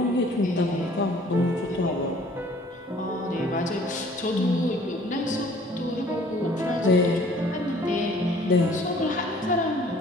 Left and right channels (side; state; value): both; normal; correlation 0.54